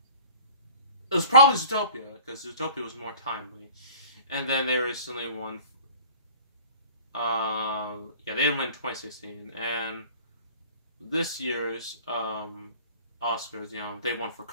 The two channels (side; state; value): both; inverted; correlation -0.45